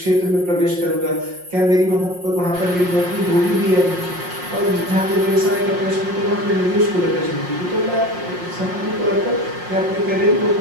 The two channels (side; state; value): left; late; 5.6 ms